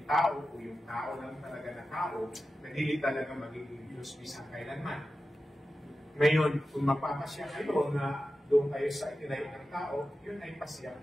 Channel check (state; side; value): normal; both; correlation 0.93